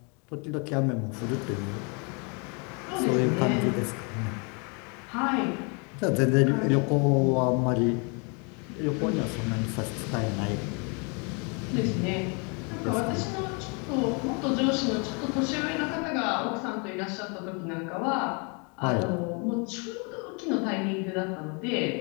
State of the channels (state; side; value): quieter; right; 34.2 dB